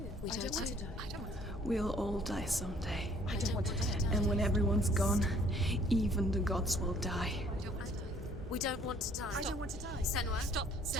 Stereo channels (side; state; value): both; normal; correlation 0.59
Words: We I die don't want too. to die. I don't want to die. We'll all die someday. I don't want to die. And when everyone's gone, even the gods will die. I don't want to die. We don't want to die. I don't want to die. Senua, stop.